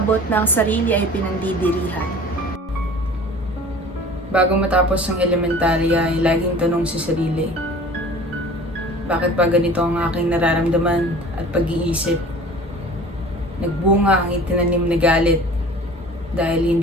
na ang sarili ay pinandidirihan. Bago matapos ang elementarya ay laging tanong sa sarili, bakit ba ganito ang aking nararamdaman at pag-iisip? Nagbunga ang itinanim na galit dahil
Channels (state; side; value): normal; both; correlation 0.43